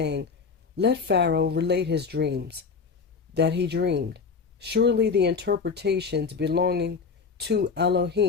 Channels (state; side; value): quieter; right; 5.3 dB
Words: Let Pharaoh relate his dreams that he dreamed. Surely the interpretations belonging to